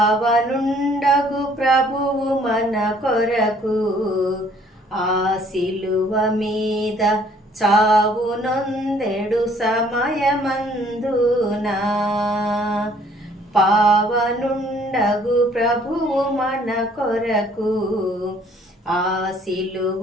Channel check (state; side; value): normal; both; correlation 0.60